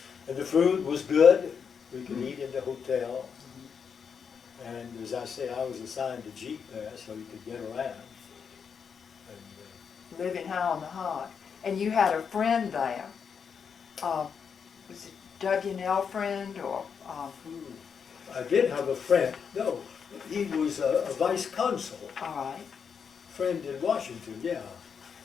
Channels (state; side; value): quieter; right; 6.6 dB